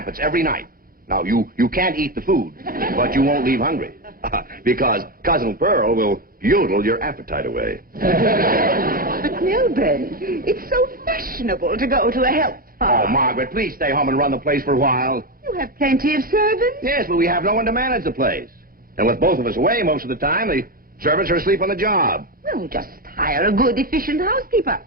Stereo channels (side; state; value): left; late; 0.42 ms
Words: every night. Now, you can't eat the food, but you won't leave hungry. Because Cousin Pearl will yodel your appetite away. But, Milburn, it's so fashionable to go to a health farm. Oh, Margaret, please stay home and run the place for a while. You have plenty of servants. Yes, but we have no one to manage the place. And with both of us away most of the time, the servants are asleep on the job. Well, just hire a good, efficient housekeeper.